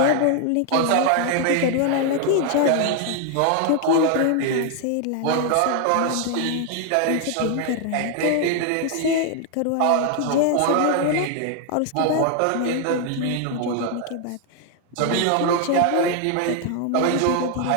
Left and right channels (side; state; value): both; different; correlation 0.00